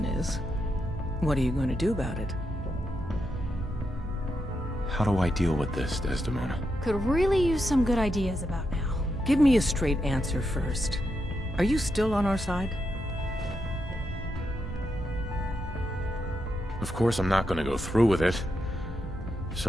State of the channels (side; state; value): both; normal; correlation 0.84